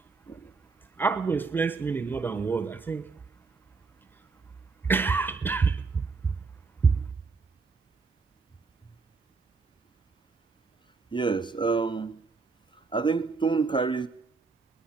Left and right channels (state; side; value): quieter; left; 4.5 dB